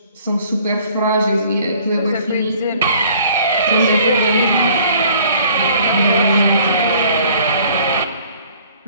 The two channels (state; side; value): inverted; both; correlation -0.55